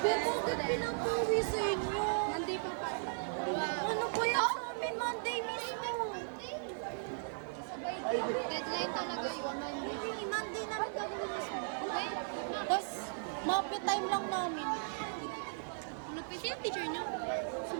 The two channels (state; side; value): silent; left; 53 dB below the other